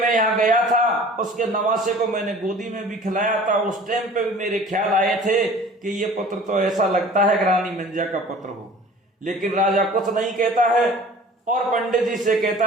यहाँ गया था, उसके नवासे को मैंने गोदी में भी खिलाया था। उस टाइम पे भी मेरे ख्याल आए थे कि ये पुत्र तो ऐसा लगता है कि रानी मंजा का पुत्र हो। लेकिन राजा कुछ नहीं कहता है और पंडित जी से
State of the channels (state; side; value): normal; both; correlation 0.45